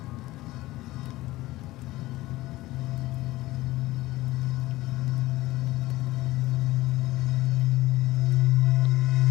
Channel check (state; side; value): quieter; right; 18.0 dB